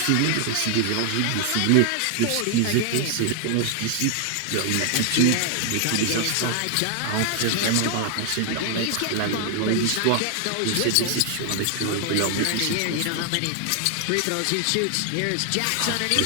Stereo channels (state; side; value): different; both; correlation 0.00